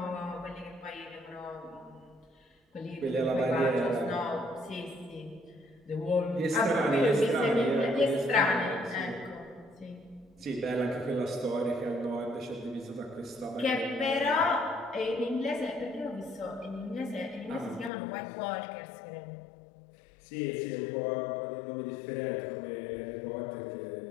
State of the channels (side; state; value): right; drops out; at 17.9 s